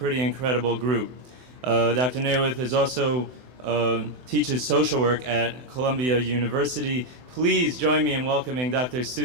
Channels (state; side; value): late; left; 24 ms